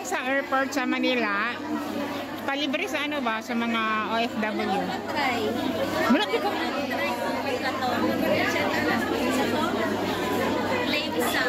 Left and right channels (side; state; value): both; identical; correlation 1.00